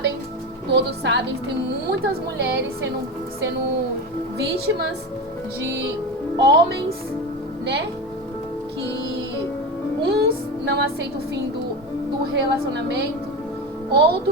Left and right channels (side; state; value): both; normal; correlation 0.22